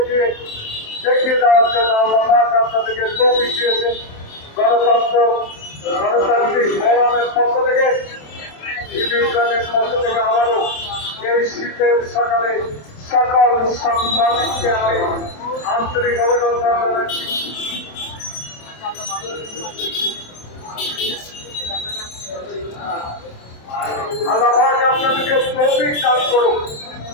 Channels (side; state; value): right; late; 27 ms